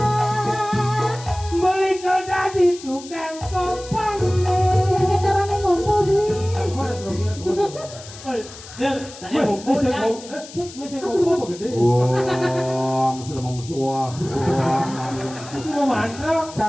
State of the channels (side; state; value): left; noise; hiss, 16 dB below the sound